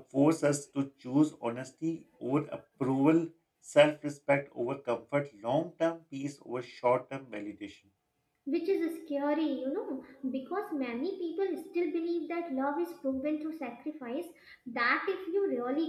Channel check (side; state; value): both; identical; correlation 1.00